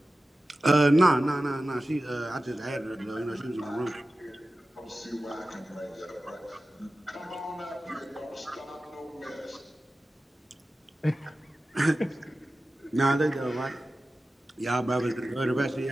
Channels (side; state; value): both; normal; correlation 0.95